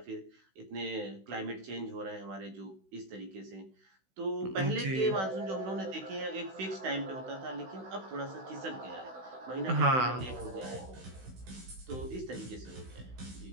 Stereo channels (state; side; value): late; left; 16 ms